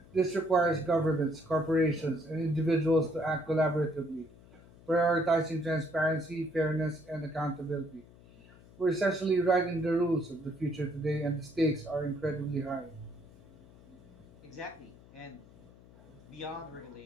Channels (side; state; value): left; noise; hum, 23 dB below the sound